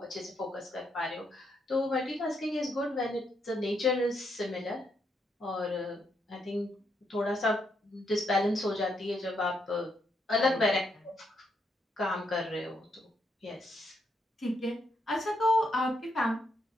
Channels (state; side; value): normal; both; correlation 0.78